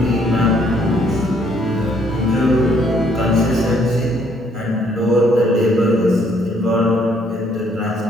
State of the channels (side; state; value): both; normal; correlation 0.66